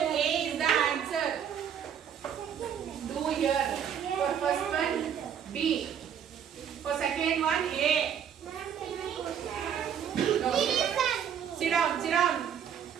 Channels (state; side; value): quieter; left; 8.5 dB